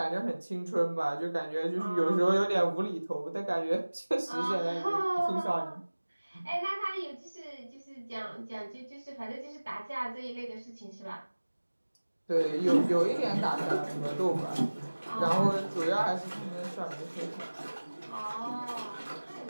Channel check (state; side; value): inverted; both; correlation -1.00